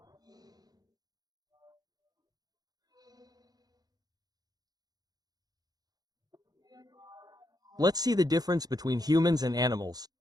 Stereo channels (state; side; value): late; left; 0.19 ms